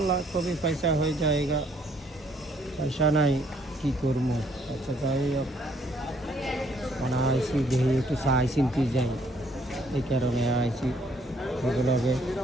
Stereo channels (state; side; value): normal; both; correlation 0.66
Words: कभी पैसा हो जाएगा, पैसा नहीं की करमो। अच्छा जाए अब मना आईसी देही একটু চাই চিন্তি যাই, এই কারণে আইছি। এগুলোকে